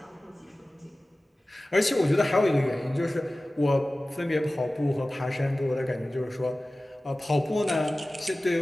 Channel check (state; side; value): normal; both; correlation 0.97